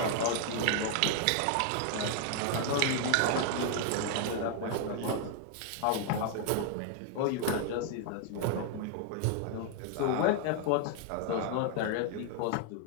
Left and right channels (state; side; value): different; both; correlation 0.00